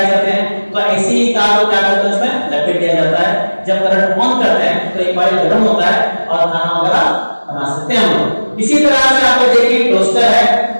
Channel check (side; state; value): both; inverted; correlation -1.00